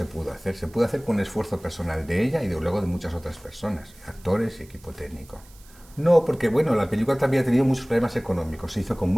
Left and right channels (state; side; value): noise; right; hiss, 26 dB below the sound